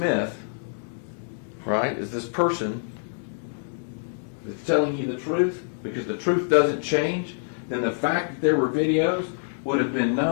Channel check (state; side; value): silent; right; digital silence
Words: right, is this person that's telling you the truth, because the truth doesn't change, then the fact that there were videos would have been